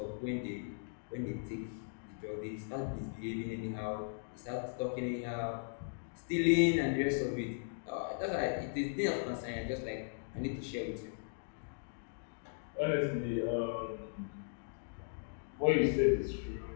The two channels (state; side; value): silent; right; digital silence